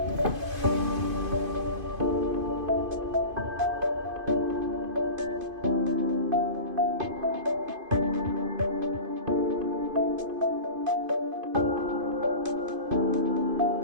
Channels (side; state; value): left; late; 2.5 ms